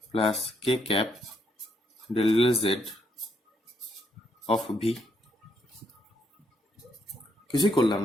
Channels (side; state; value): both; normal; correlation 0.74